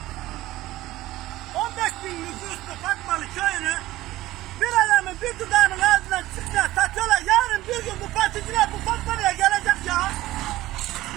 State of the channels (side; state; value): left; quieter; 16.6 dB